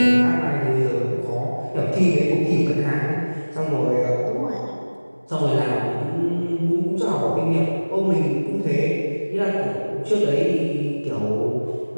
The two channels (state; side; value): inverted; both; correlation -1.00